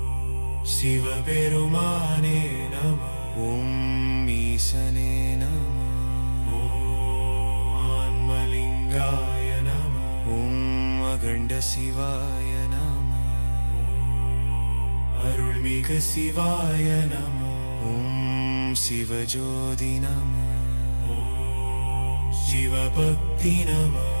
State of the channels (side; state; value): both; inverted; correlation -1.00